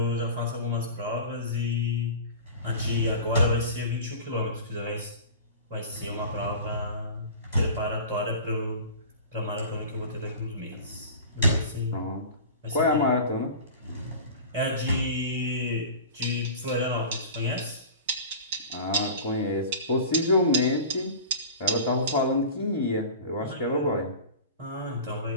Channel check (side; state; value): both; inverted; correlation -0.36